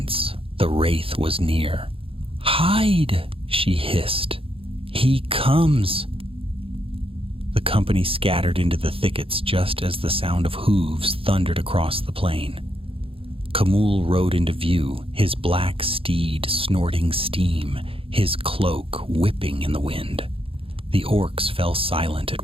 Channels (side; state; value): left; late; 0.27 ms